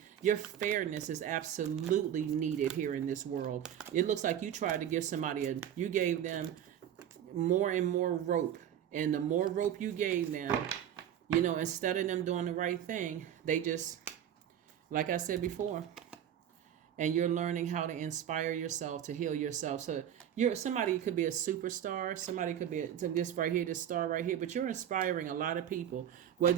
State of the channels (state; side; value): quieter; left; 10.1 dB